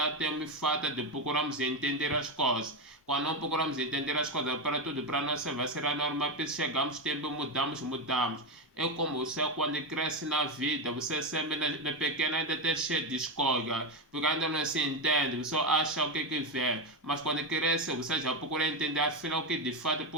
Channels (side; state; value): both; normal; correlation 0.11